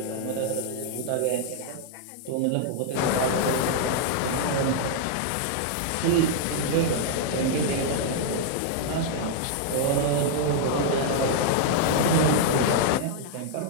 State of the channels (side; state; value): both; different; correlation -0.01